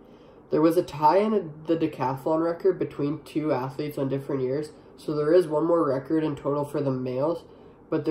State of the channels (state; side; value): identical; both; correlation 1.00